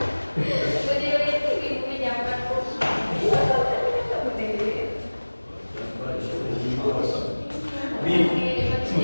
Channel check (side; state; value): both; inverted; correlation -1.00